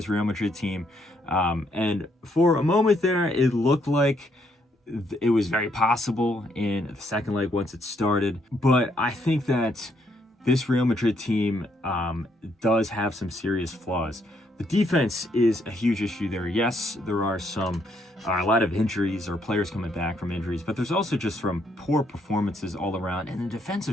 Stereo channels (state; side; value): normal; both; correlation 0.73